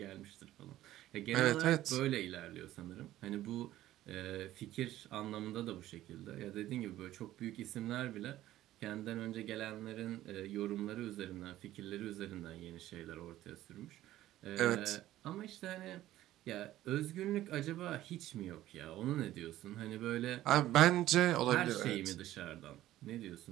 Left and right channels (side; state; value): left; quieter; 14.4 dB